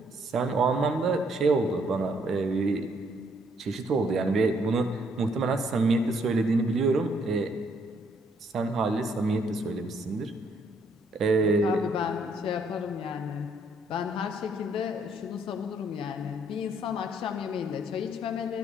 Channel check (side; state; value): both; normal; correlation 0.68